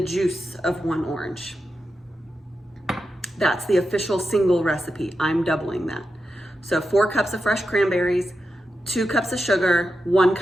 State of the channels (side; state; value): both; normal; correlation 0.89